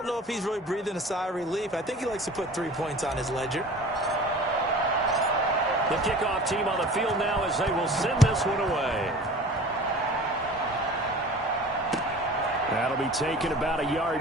know if he's really breathing a sigh of relief. I think he likes to put 3 points on his ledger. The kickoff team on the field now as they will send this one away. That'll be taken about a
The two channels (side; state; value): both; normal; correlation 0.41